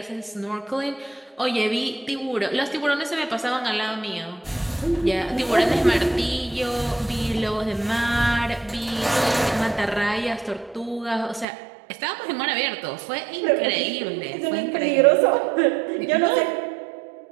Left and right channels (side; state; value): left; drops out; at 11.5 s